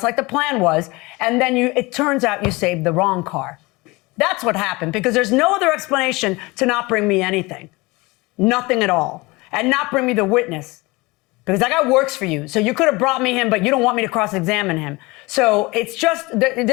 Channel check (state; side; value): quieter; right; 23.6 dB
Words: like the plan was. And then it turns out you saved the wrong car. That's what happened, because there's no other explanation to not bring me anything. Nothing at all. And not bring me the witness. because that guy works for you. So you could have brought me him, but you don't want me to cross-examine him. So it's just,